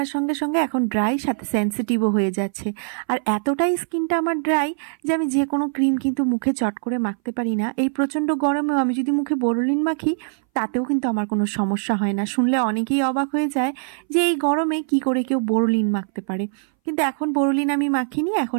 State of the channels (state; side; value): silent; left; 61 dB below the other